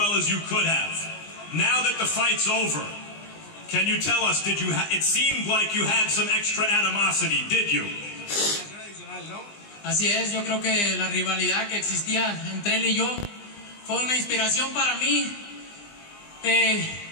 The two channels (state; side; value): late; right; 20 ms